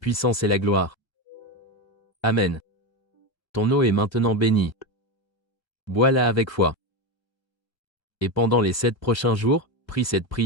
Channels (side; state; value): right; late; 1.3 ms